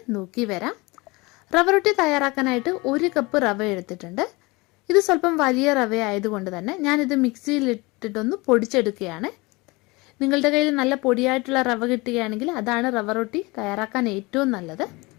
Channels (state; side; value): quieter; right; 24.3 dB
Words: നോക്കി വരാം. റവ റൊട്ടി തയ്യാറാക്കാനായിട്ട് 1 കപ്പ് റവ എടുത്തിട്ടുണ്ട്. ഇത് സ്വല്പം വലിയ റവ ആയതുകൊണ്ട് തന്നെ ഞാനിത് മിക്സിയിലിട്ടിട്ടൊന്ന് പൊടിച്ചെടുക്കുകയാണ്. നിങ്ങളുടെ കയ്യിൽ നല്ല പൊടിയായിട്ടുള്ള റവ കിട്ടുകയാണെങ്കിൽ അതാണ് റവ റൊട്ടി തയ്യാറാക്കാൻ ഏറ്റവും നല്ലത്.